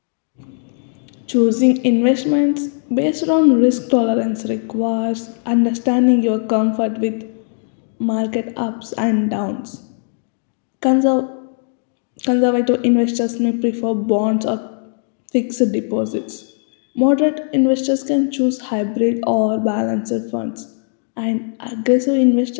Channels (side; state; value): right; silent; digital silence